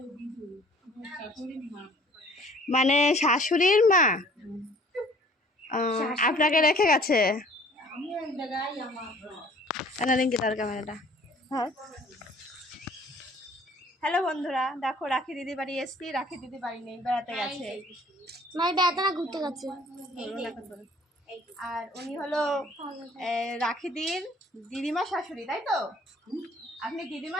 মানে শাশুড়ির মা আপনাকে রেখে গেছে। তার ক্যামেরাটা। হ্যালো বন্ধুরা, দেখো রাখি দিদি বাড়ি এসছি। রাখি দিদি বাড়ি নেই, বেড়াতে গেছে। ঘুরতে গেছে। আর উনি হলো রাখিদির দিদিমা শাশুড়ি, তাই তো? আপনি দিদিমা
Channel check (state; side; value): normal; both; correlation 0.54